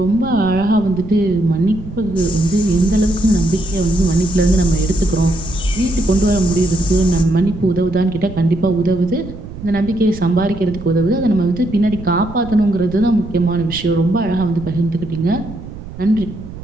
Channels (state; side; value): noise; right; rumble, 13 dB below the sound